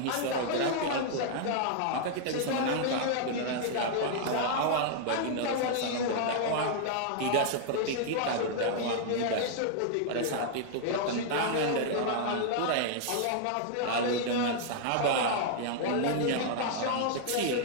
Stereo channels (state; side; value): different; both; correlation -0.01